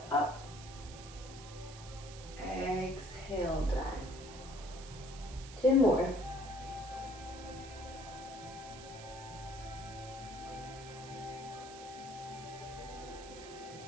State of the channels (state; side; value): noise; right; hiss, 15 dB below the sound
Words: up. Exhale, down. 2 more.